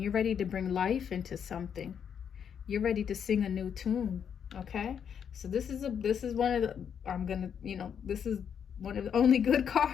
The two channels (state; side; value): quieter; right; 7.9 dB